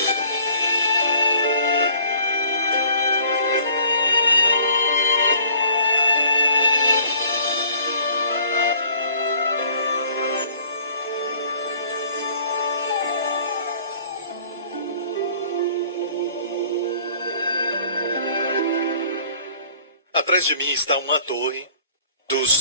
Atrás de mim está uma torre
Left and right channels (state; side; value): inverted; both; correlation -0.54